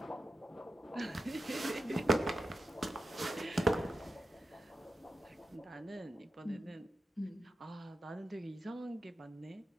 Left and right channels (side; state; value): both; normal; correlation 0.91